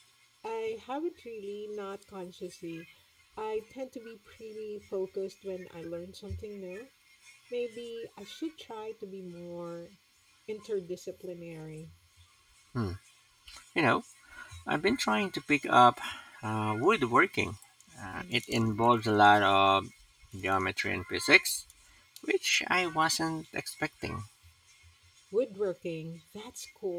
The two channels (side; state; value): both; identical; correlation 1.00